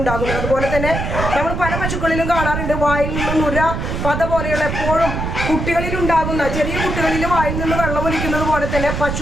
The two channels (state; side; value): noise; right; rumble, 3 dB below the sound